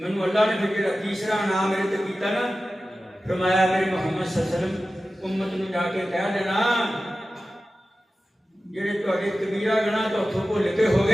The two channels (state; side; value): normal; both; correlation 0.95